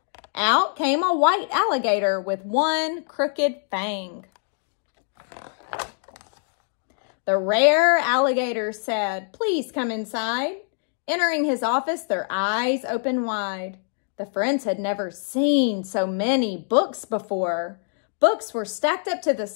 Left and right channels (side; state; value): right; silent; digital silence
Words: Out came a white alligator with one crooked fang. The rare alligator said, please come inside. Entering his office, their eyes opened wide. The friends had never seen so many books before. Books were stacked up to the